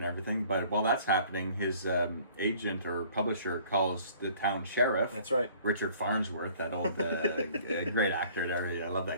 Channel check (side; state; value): both; inverted; correlation -0.54